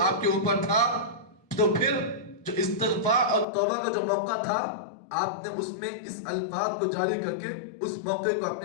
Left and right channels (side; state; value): right; drops out; at 3.5 s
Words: کے اوپر تھا تو پھر جو استغفار اور توبہ کا جو موقع تھا آپ نے اس میں اس الفاظ کو جاری کر کے اس موقع کو